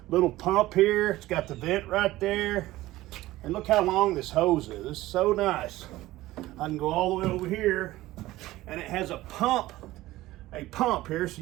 little pump here. It's got the vent right there. And look how long this hose is. This is so nice. I can go all the way over here, and it has a pump here so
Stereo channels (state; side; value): quieter; left; 16.9 dB